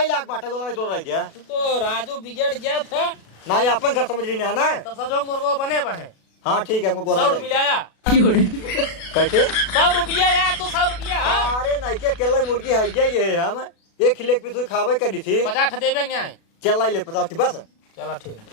लाग बाटे गोला दो रह गया तू तो राजू बिगड़ गया था ना ये अपन घर समझ रही है ना तब सजोग मुर्गो बने बने हाँ ठीक है हमको गोला 100 मिलाया कैसे 100 रुपया यार तू 100 रुपया हाँ अरे नहीं के केला मुर्गी है ये हम एक लेग पीस खावे करी थी 50 देवे न्याय चल लाई ले 50 बस चला ठीक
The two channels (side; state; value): right; late; 36 ms